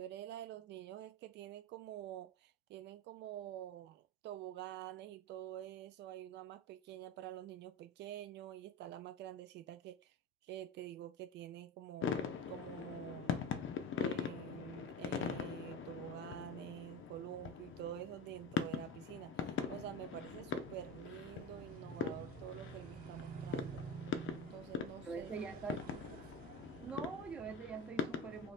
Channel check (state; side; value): normal; both; correlation 0.25